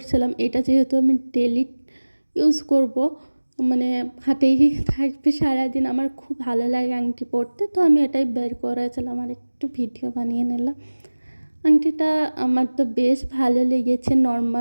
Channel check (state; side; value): inverted; both; correlation -1.00